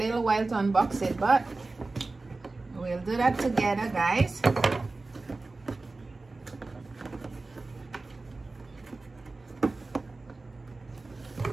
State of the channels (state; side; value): quieter; left; 3.4 dB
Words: while to unbox it, but we'll do that together, guys.